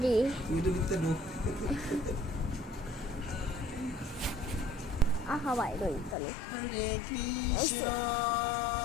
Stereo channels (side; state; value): right; drops out; at 6.2 s